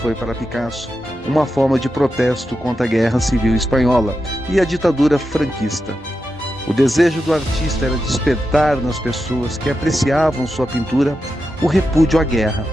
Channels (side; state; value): both; normal; correlation 0.89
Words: para Picasso uma forma de protesto contra a Guerra Civil Espanhola e a ditadura franquista. O desejo do artista era despertar nas pessoas que apreciavam sua pintura o repúdio à guerra.